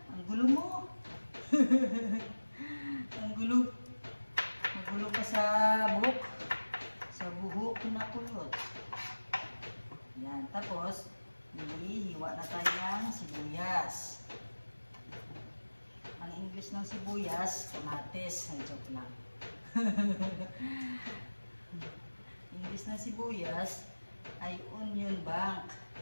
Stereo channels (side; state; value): both; inverted; correlation -1.00